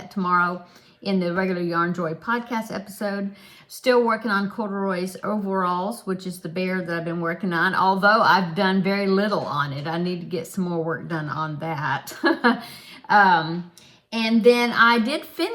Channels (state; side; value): identical; both; correlation 1.00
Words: tomorrow in the regular Yarn Joy podcast episode. Still working on Corduroy's overalls, which is the bear that I've been working on, although I've done very little on it. I need to get some more work done on that. And then I did